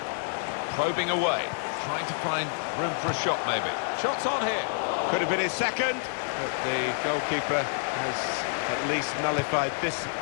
Probing away, trying to find room for a shot maybe. Shots on here. Could have been his second, but the goalkeeper has at least nullified this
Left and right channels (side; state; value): right; silent; digital silence